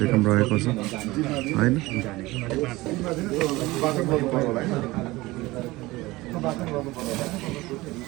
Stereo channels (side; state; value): left; quieter; 20.1 dB